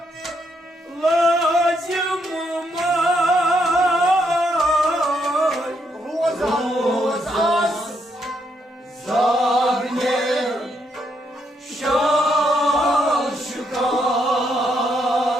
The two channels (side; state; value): both; normal; correlation 0.76